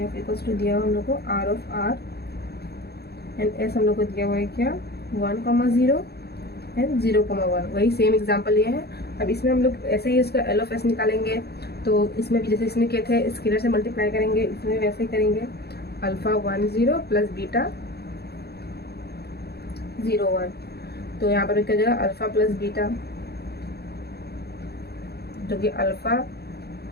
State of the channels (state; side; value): late; right; 0.47 ms